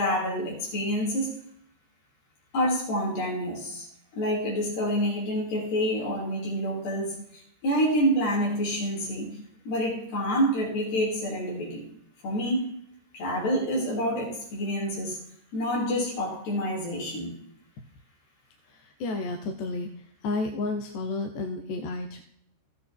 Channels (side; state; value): right; late; 13 ms